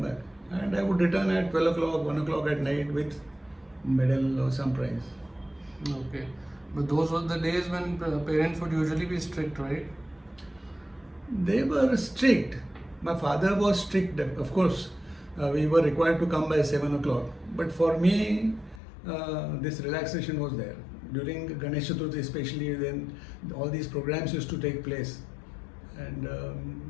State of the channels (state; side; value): drops out; right; at 18.8 s